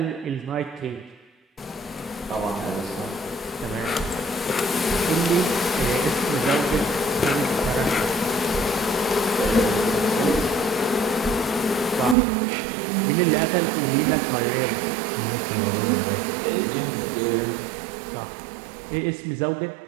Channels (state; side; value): drops out; left; at 12.2 s